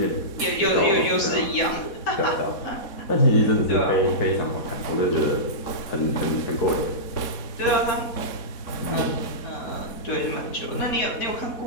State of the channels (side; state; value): right; late; 4.2 ms